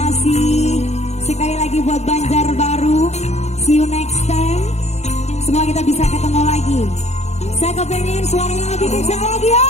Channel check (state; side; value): late; right; 0.32 ms